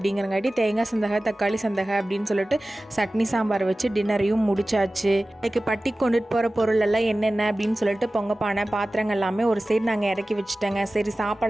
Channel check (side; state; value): both; normal; correlation 0.96